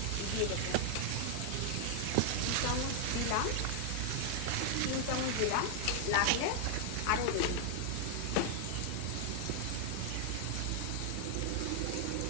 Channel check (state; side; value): different; both; correlation 0.00